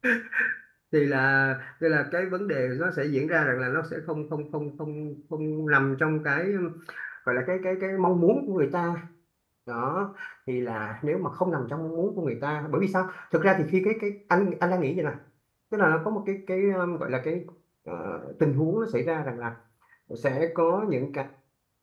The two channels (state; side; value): identical; both; correlation 1.00